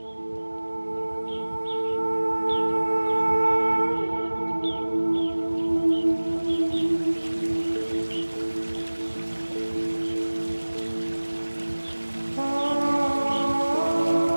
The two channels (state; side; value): inverted; both; correlation -1.00